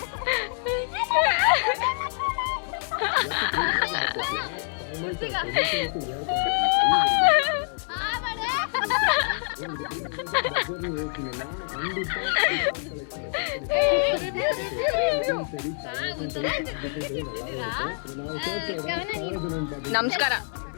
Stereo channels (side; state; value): right; silent; digital silence